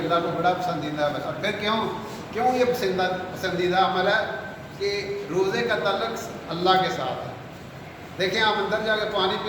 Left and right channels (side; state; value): both; identical; correlation 1.00